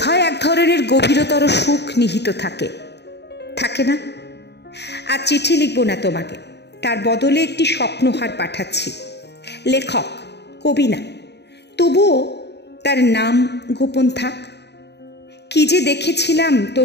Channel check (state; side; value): late; right; 0.49 ms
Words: এক ধরনের গভীরতর সুখ নিহিত থাকে না? আর চিঠি লিখব না তোমাকে, তার বদলে একটি স্বপ্নহার পাঠাচ্ছি। লেখক, কবি না, তবুও তার নাম গোপন থাক। কি যে দেখেছিলাম